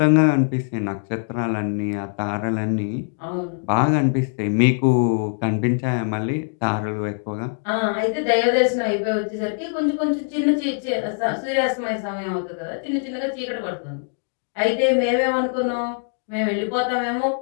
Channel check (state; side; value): silent; right; digital silence